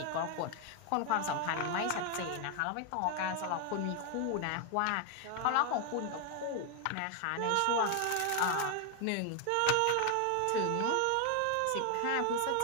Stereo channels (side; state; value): both; different; correlation 0.00